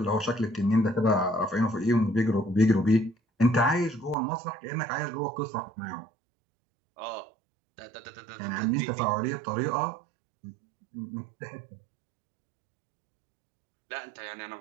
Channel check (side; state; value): left; drops out; at 4.2 s